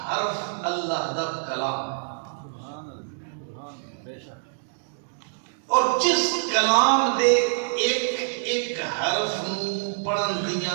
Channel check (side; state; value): left; silent; digital silence